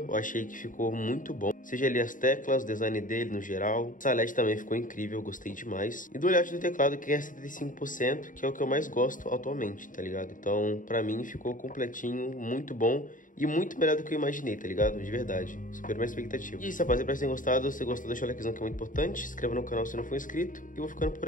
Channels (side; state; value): right; late; 0.38 ms